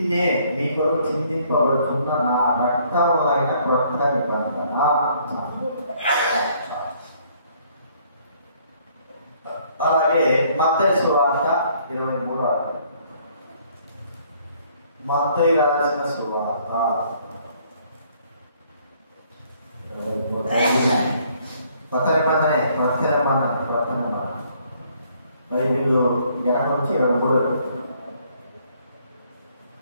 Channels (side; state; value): both; inverted; correlation -0.64